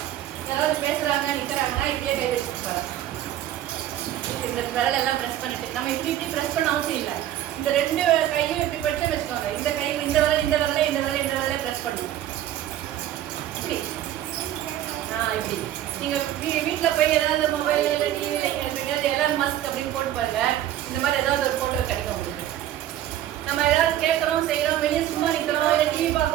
யாராவது பேசுறாங்க நிற்கிறாங்கன்னா இப்படியே கை வச்சுருப்பாங்க. இந்த விரல் எல்லாம் ப்ரெஸ் பண்ணிட்டு நம்ம இப்படி ப்ரெஸ் பண்ண அவசியம் இல்லை. இந்த 2 கையும் இப்படி படிச்சு வச்சுக்கோங்க. இந்த கை இந்த விரலை ப்ரெஸ் பண்ணுங்க. இப்படி இப்படி நீங்கள் வீட்டில் போய் ஏதாவது மொபைல் இல்லை டிவியில் எலான் மஸ்க் அப்படின்னு போட்டு பாருங்க. இந்த மாதிரி ஏதாவது ஒரு ஃபோட்டோ கிடைக்கும் உங்களுக்கு. நம்ம ஏதாவது கேட்குறோம் செய்கிறோம் வெளியே சும்மா நிற்கிறோம் இல்லை டிவி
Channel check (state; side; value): quieter; left; 12.4 dB